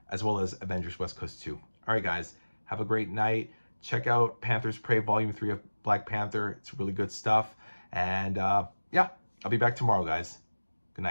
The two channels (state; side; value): inverted; both; correlation -1.00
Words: as well as Avengers West Coast 2. All right, guys, have a great night. Check out Panther's Prey Volume 3 of Black Panther. It's really good stuff. And yeah, I'll be back tomorrow, guys. Good